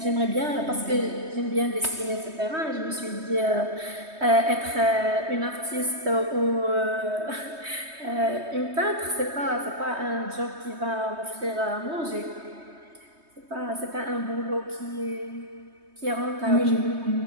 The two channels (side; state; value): left; late; 3.2 ms